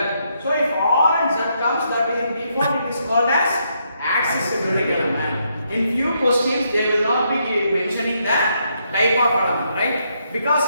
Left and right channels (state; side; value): inverted; both; correlation -0.77